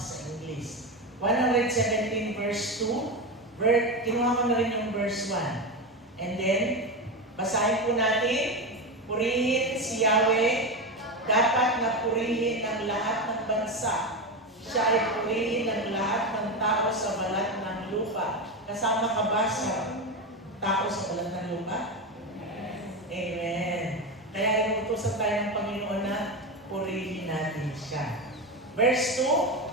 English. 117 verse 2, kinuha ko na rin yung verse 1. And then, basahin po natin, purihin si Yahweh, dapat na purihin ng lahat ng bansa. Siya ay purihin ng lahat ng tao sa balat ng lupa. Kasama ka ba sa tao sa balat ng lupa? Amen. Kaya inutusan tayo ng Panginoon na purihin natin siya. Verse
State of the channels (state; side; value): normal; both; correlation 0.17